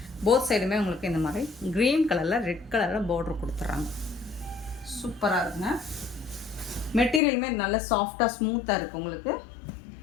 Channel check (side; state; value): right; drops out; at 7.2 s